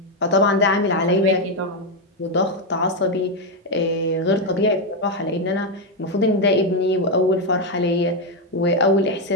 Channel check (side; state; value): both; normal; correlation 0.05